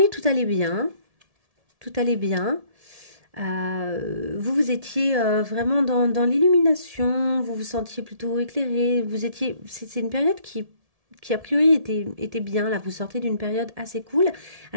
tout allait bien. Tout allait bien. Vous étiez vraiment dans l'illumination, vous vous sentiez plutôt éclairé, c'est une période qui a priori était bien, là, vous sortez d'une période assez cool.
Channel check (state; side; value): late; left; 1.7 ms